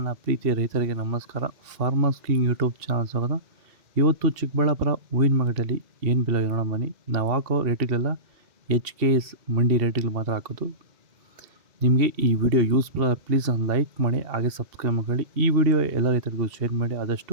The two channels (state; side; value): late; left; 2.7 ms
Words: ಪ್ರೀತಿಯ ರೈತರಿಗೆ ನಮಸ್ಕಾರ. ಫಾರ್ಮರ್ಸ್ ಕಿಂಗ್ ಯೂಟ್ಯೂಬ್ ಚಾನಲ್ ಸ್ವಾಗತ. ಇವತ್ತು ಚಿಕ್ಕಬಳ್ಳಾಪುರ ಹೂವಿನ ಮಾರ್ಕೆಟಲ್ಲಿ ಏನು ಬೆಲೆ ನೋಡೋಣ ಬನ್ನಿ. ನಾವು ಹಾಕೋ ರೇಟ್ಗಳೆಲ್ಲ HKS ಮಂಡಿ ರೇಟ್ಗಳು ಮಾತ್ರ ಹಾಕೋದು. ನಿಮಗೆ ಈ ವಿಡಿಯೋ ಯೂಸ್ಫುಲ್ ಪ್ಲೀಸ್ ಒಂದು ಲೈಕ್ ಮಾಡಿ, ಹಾಗೆ ಸಬ್ಸ್ಕ್ರೈಬ್ ಮಾಡಿ. ಈ ವಿಡಿಯೋ ಎಲ್ಲ ರೈತರಿಗೂ ಶೇರ್ ಮಾಡಿ ಆದಷ್ಟು.